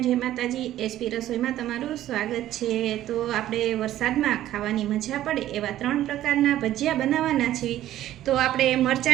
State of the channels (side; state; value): left; quieter; 13.2 dB